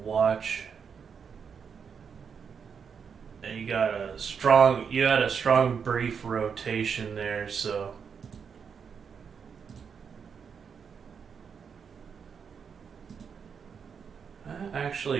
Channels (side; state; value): left; quieter; 6.6 dB